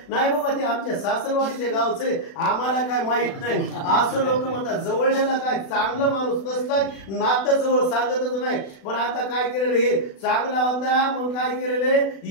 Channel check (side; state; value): right; late; 36 ms